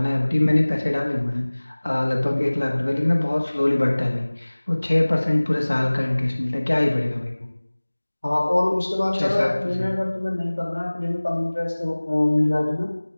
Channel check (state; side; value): inverted; both; correlation -1.00